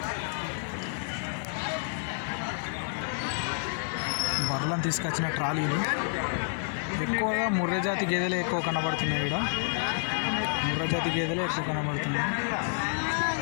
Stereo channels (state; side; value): silent; right; 58 dB below the other